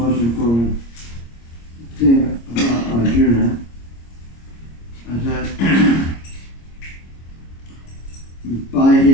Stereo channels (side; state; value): right; late; 26 ms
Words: important thing about Arjuna is that by